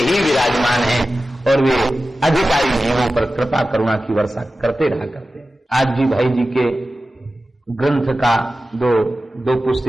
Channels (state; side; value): normal; both; correlation 0.95